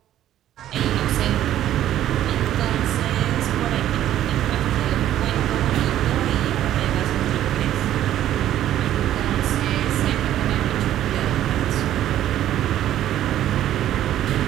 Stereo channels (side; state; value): left; quieter; 12.2 dB